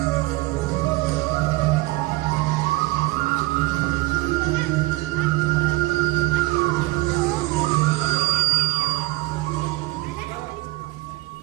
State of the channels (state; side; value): quieter; left; 21.6 dB